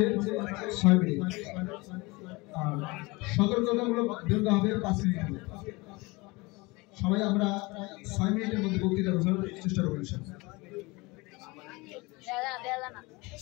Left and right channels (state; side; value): quieter; right; 24.4 dB